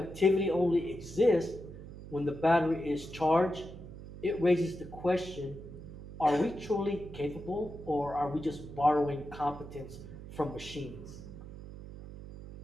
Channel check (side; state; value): right; noise; hum, 13 dB below the sound